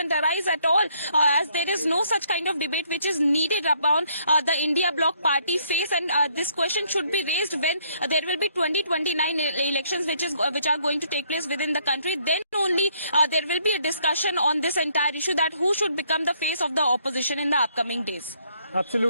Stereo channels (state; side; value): inverted; both; correlation -0.68